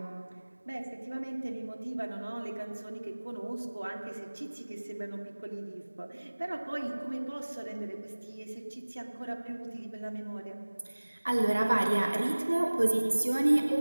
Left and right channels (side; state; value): both; inverted; correlation -1.00